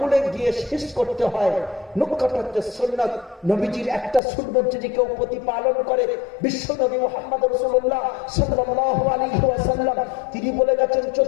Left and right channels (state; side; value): drops out; right; at 4.2 s